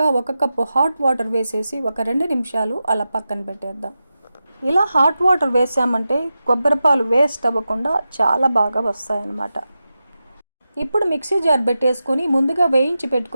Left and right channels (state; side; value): inverted; both; correlation -0.91